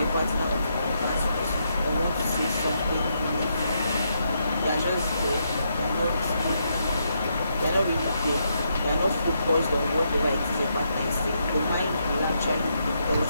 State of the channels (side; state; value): both; inverted; correlation -0.79